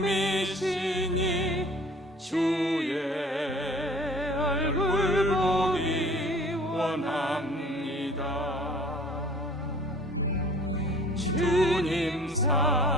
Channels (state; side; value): normal; both; correlation 0.49